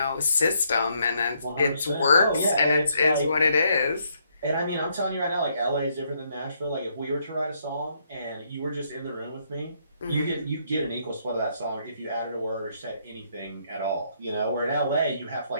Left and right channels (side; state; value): both; inverted; correlation -0.72